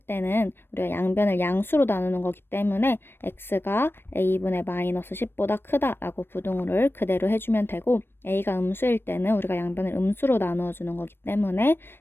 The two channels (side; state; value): right; late; 0.10 ms